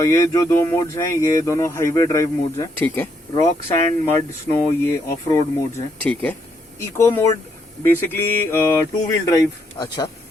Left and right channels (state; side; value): normal; both; correlation 0.75